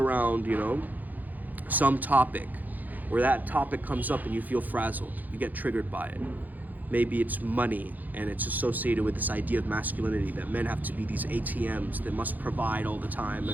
some topic, where that topic comes up and you feel frazzled, you get triggered by it. Maybe it's money and it's associated with this idea of masculinity, that men have to be these ATMs that must provide all the time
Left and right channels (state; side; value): late; left; 0.083 ms